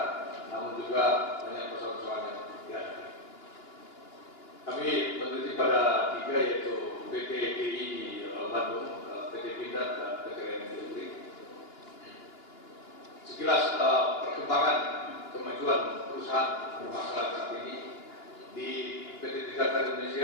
namun juga banyak persoalan-persoalan yang dihadapi. Kami meneliti pada 3, yaitu PT DI di Bandung, PT Pindad, dan PT Listrik. Sekilas perkembangan kemajuan perusahaan bermasalah saat ini di PT Pindad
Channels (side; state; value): right; late; 2.9 ms